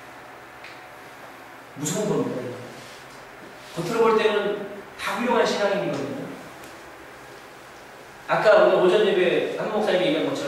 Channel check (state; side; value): identical; both; correlation 1.00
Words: 무서운 겁니다. 겉으로 볼 때는 다 훌륭한 신앙인이거든요. 아까 오늘 오전 예배 한 목사님이 얘기한